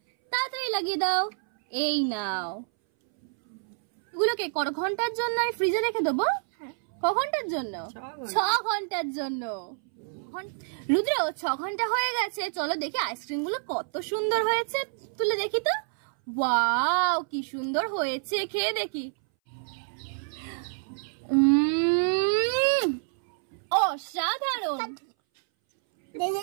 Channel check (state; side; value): silent; left; 60 dB below the other